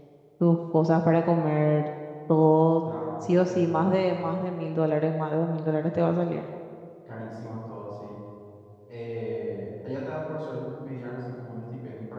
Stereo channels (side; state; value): both; identical; correlation 1.00